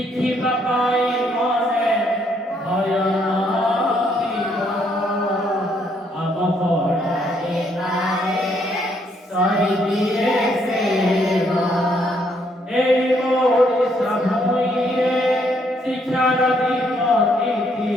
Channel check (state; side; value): normal; both; correlation 0.70